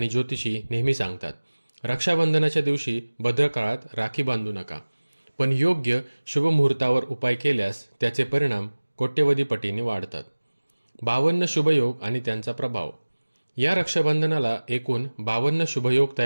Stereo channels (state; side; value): inverted; both; correlation -1.00